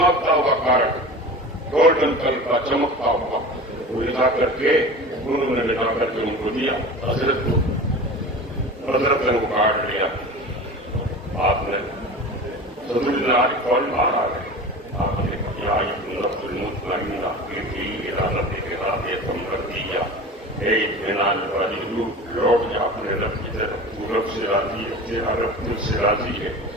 हुआ कार्ड, गोल्डन कलर का चमकता हुआ, वो ले जा करके उन्होंने ले जा करके उनको दिया हजरत को। हजरत ने वो कार्ड लिया, आपने सदरुद्दीन आरिफ फौरन बाहर आ गए। आपने लौट जा अपने रब की तरफ, रब से राजी है, तेरा रब तुझ से राजी है।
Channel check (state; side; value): normal; both; correlation 0.34